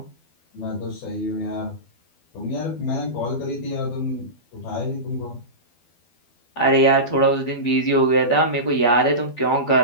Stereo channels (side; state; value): right; late; 12 ms